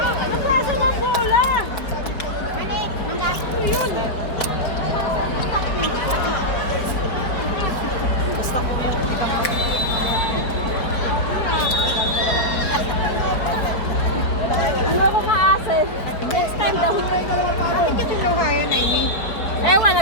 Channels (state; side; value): late; right; 4.8 ms